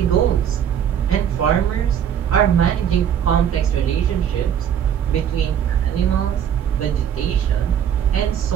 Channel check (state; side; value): quieter; left; 9.0 dB